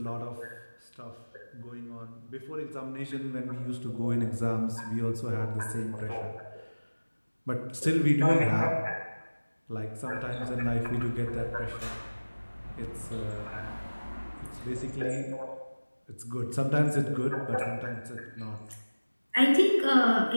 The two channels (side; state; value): both; inverted; correlation -1.00